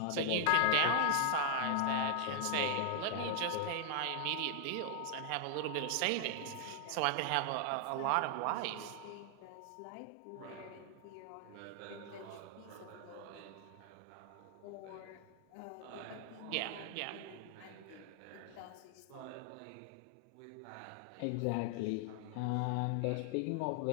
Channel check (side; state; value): both; different; correlation 0.00